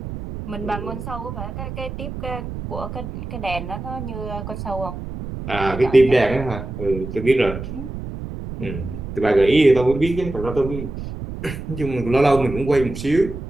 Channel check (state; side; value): noise; right; rumble, 8 dB below the sound